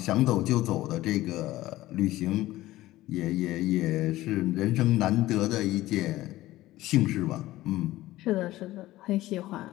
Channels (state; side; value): quieter; right; 16.5 dB